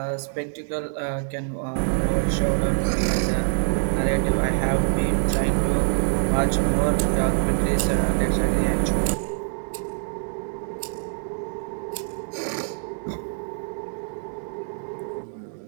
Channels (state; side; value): silent; left; digital silence